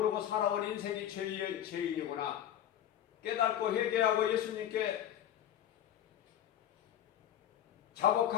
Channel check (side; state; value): right; quieter; 10.8 dB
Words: 살아온 인생이 죄인이구나. 깨닫고 회개하고 예수님께